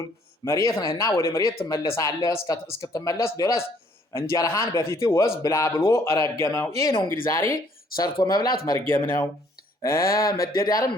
መሬት ነህና ወደ መሬት ትመለሳለህ፣ እስክትመለስ ድረስ እንጀራህን በፊትህ ወዝ ብላ ብሎ ረገመው። ይህ ነው እንግዲህ ዛሬ ሰርቶ መብላት መርገም ነው። መደዳርም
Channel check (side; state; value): both; normal; correlation 0.63